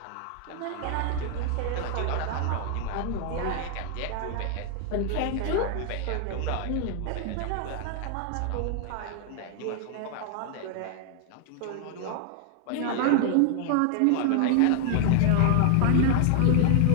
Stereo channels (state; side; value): different; both; correlation 0.00